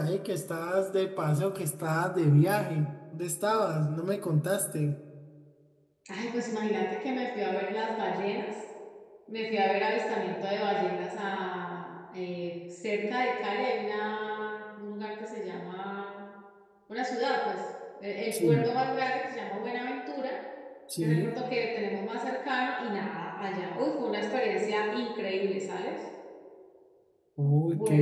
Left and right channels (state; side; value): identical; both; correlation 1.00